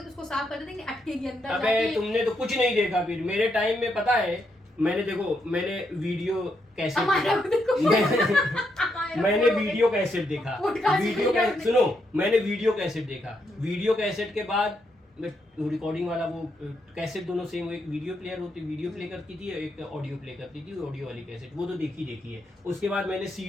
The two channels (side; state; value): both; normal; correlation 0.79